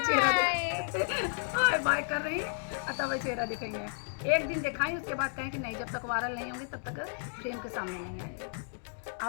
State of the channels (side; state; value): right; silent; digital silence